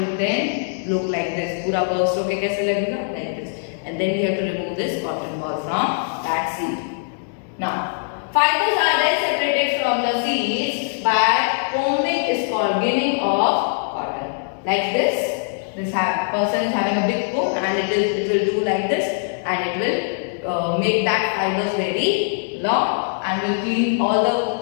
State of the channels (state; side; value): silent; right; digital silence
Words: then look like this. पूरा burst होके कैसे लगेगा? Like this. And then we have to remove this cotton ball from that seed. Now, fibers are then separated from the seeds by combing is called ginning of cotton. Like this. This person is having a big comb and it will do like this and it will make that fibers very long and will clean all the